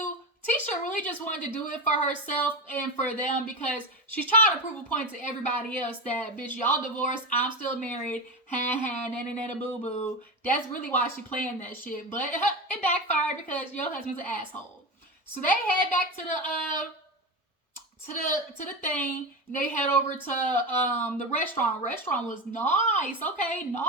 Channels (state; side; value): normal; both; correlation 0.20